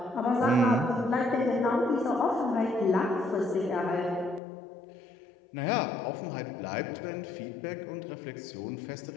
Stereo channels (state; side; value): drops out; right; at 4.4 s